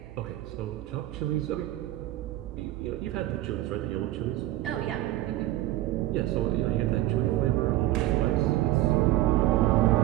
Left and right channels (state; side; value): quieter; left; 15.6 dB